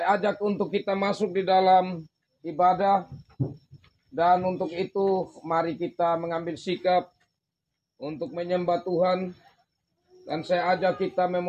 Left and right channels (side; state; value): both; identical; correlation 1.00